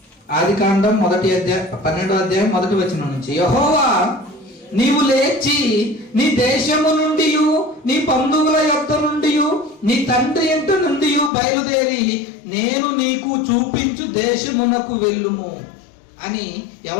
ఆదికాండం 12వ అధ్యాయం మొదటి వచనం నుంచి. యెహోవా, నీవు లేచి నీ దేశము నుండి, నీ బంధువుల యొద్ద నుండి, నీ తండ్రి ఇంట నుండి బయలుదేరి నేను నీకు చూపించు దేశమునకు వెళ్ళుము అని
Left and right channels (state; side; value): drops out; right; at 11.3 s